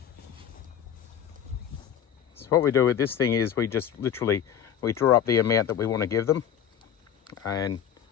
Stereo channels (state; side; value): quieter; right; 9.1 dB